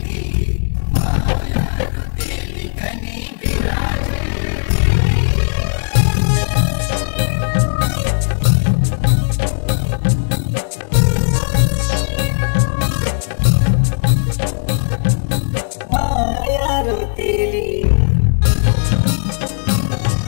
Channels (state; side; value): silent; right; digital silence